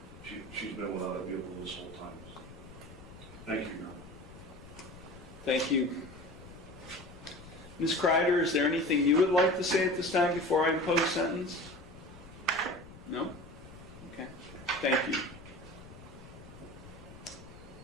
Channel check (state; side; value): noise; left; rumble, 17 dB below the sound